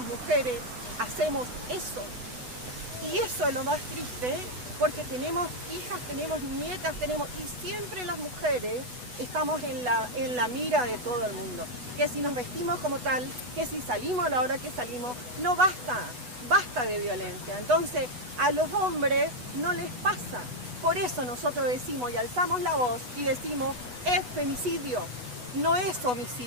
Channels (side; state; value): left; late; 8.1 ms